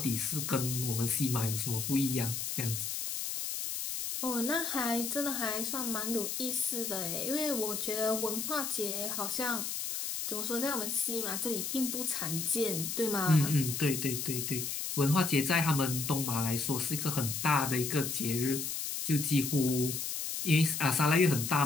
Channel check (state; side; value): noise; left; hiss, 3 dB below the sound